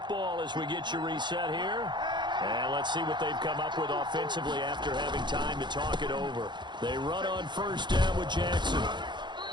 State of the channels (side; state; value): left; late; 0.22 ms